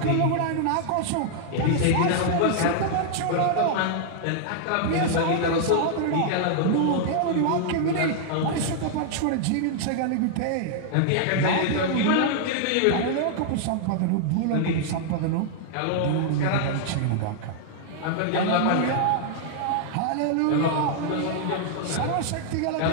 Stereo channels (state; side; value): different; both; correlation -0.01